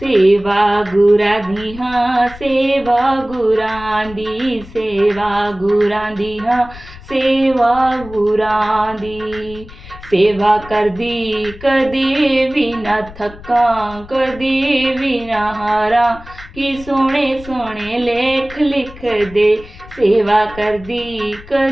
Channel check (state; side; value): noise; left; rumble, 18 dB below the sound